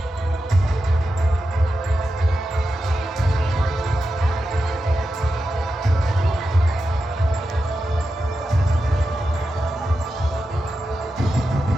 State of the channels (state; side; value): normal; both; correlation 0.90